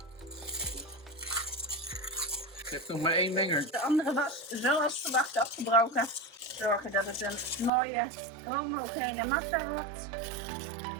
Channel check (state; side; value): drops out; left; at 7.7 s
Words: Je hebt nog maar 1 menger. De andere was zoals verwacht afgebroken. Zorgen dat het een mooie homogene massa wordt.